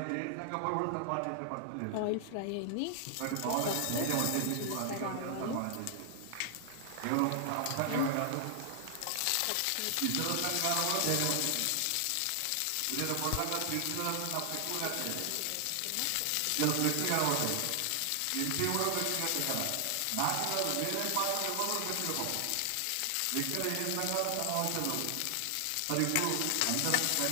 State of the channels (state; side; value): different; both; correlation 0.00